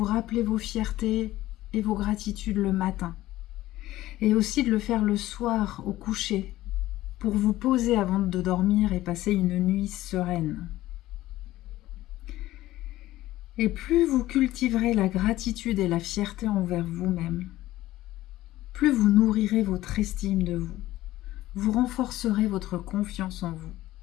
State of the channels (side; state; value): right; quieter; 15.8 dB